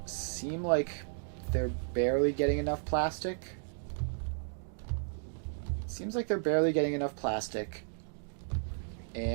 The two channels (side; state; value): left; silent; digital silence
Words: seem like they're barely getting enough plastic. Seems like they're barely getting enough plastic,